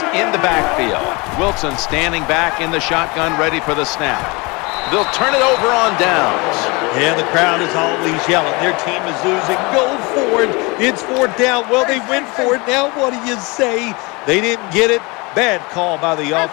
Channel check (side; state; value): right; quieter; 26.7 dB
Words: in the backfield. Wilson standing back in the shotgun, ready for the snap. They'll turn it over on downs. Yeah, the crowd is always yelling. Their team is losing. Go for it. It's 4th down. Well, they went for it. Now what do you say? They didn't get it. Bad call by the